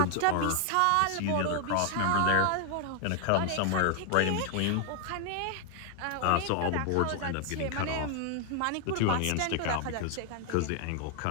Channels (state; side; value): different; both; correlation 0.00